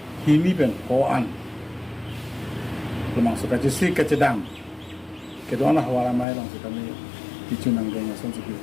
himi ben ko an lemang suka jisi kecedang kedua hawara maya lang suka ni tichunang geng asong sikil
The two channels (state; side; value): drops out; right; at 6.2 s